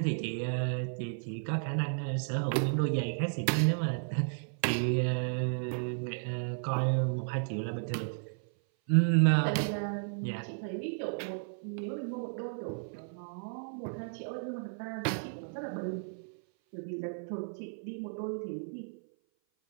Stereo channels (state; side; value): silent; left; 55 dB below the other